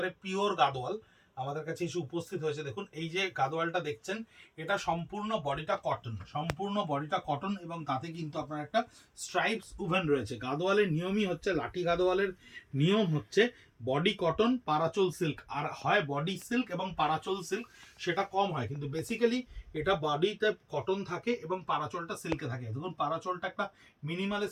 পিওর গাদোয়াল আমাদের কাছে এসে উপস্থিত হয়েছে। দেখুন এই যে গাদোয়ালটা দেখছেন, এটা সম্পূর্ণ বডিটা কটন, সম্পূর্ণ বডিটা কটন এবং তাতে কিন্তু আপনার একটা স্ট্রাইপস উভেন রয়েছে। গাদোয়ালের নিয়মই হচ্ছে, লাঠি গাদোয়ালের নিয়ম হচ্ছে বডি কটন, পারাচল সিল্ক, আর হয় বডি সিল্ক এবং পারাচল সিল্ক, সেটা কম হয়, কিন্তু বেসিক্যালি এটা বডিতে কটন থাকে এবং পারাচলটা সিল্কে থাকে। দেখুন পারাচলটা একটা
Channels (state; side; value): identical; both; correlation 1.00